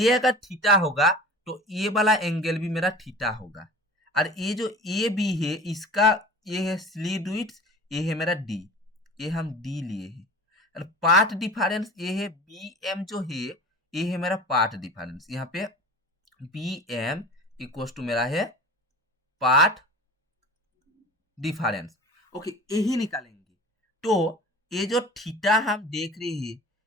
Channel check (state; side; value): normal; both; correlation 0.38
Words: अगर थीटा होगा तो ये वाला एंगल भी मेरा थीटा होगा, और ये जो ए बी है इसका ये है स्लीट विड्थ, ये है मेरा डी, ये हम डी लिए हैं। और पाथ डिफरेंस ये है बी एम जो है, ये है मेरा पाथ डिफरेंस। यहाँ पे बी एम इक्वल टू मेरा है पाथ डिफरेंस। ओके, यही निकालेंगे। तो ये जो थीटा हम देख रहे हैं